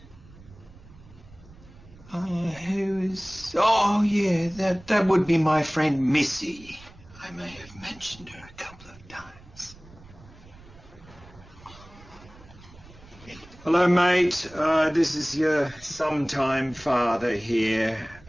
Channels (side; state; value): right; noise; rumble, 22 dB below the sound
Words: Who's... Oh, yeah, that would be my friend Missy. I may have mentioned her a couple of times. Hello, mate. This is your sometime father here.